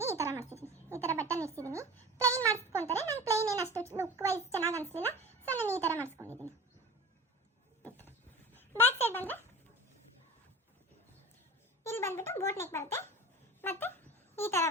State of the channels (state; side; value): normal; both; correlation 0.37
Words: ಈ ಥರ ಮಾಡ್ತಿದ್ದೀನಿ. ಈ ಥರ ಬಟನ್ ಇಡ್ಸಿದ್ದೀನಿ. ಪ್ಲೈನ್ ಮಾಡಿಸ್ಕೊತಾರೆ. ನಾನು ಪ್ಲೈನ್ ಏನು ಅಷ್ಟು ಲುಕ್ ವೈಸ್ ಚೆನ್ನಾಗಿ ಅನಿಸ್ಲಿಲ್ಲ. ಸೊ ನಾನು ಈ ಥರ ಮಾಡಿಸ್ಕೊಂಡಿದ್ದೀನಿ. ಬ್ಯಾಕ್ ಸೈಡ್ ಬಂದರೆ ಇಲ್ಲಿ ಬಂದ್ಬಿಟ್ಟು ಬೋಟ್ ನೆಕ್ ಬರುತ್ತೆ. ಮತ್ತು ಈ ಥರ